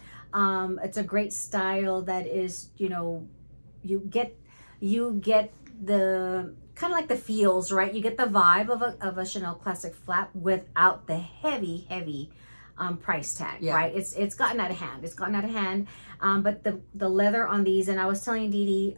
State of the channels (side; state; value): both; inverted; correlation -1.00